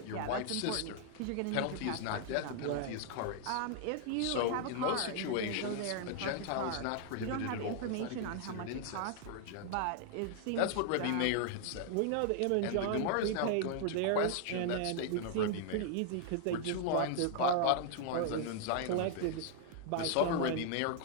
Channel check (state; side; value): different; both; correlation 0.00